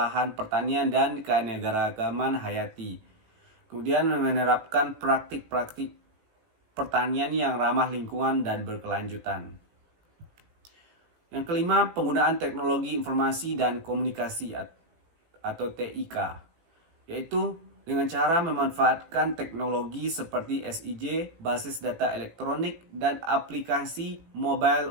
pertanian, dan keanekaragaman hayati. Kemudian menerapkan praktik-praktik pertanian yang ramah lingkungan dan berkelanjutan. Yang kelima, penggunaan teknologi informasi dan komunikasi atau TIK, yaitu dengan cara memanfaatkan teknologi seperti SIG, basis data elektronik, dan aplikasi mobile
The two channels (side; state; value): left; late; 18 ms